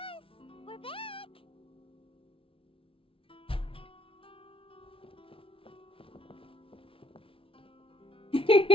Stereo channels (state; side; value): late; right; 0.26 ms